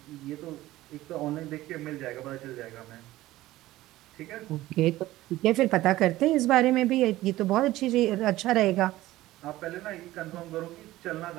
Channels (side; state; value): left; quieter; 16.4 dB